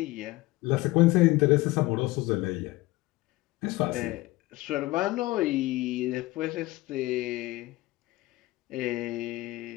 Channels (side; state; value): right; quieter; 19.8 dB